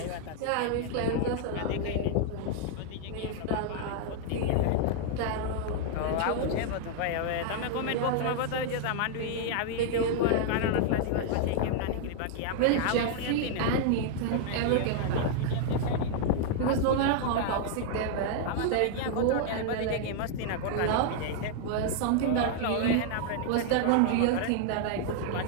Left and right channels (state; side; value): different; both; correlation 0.00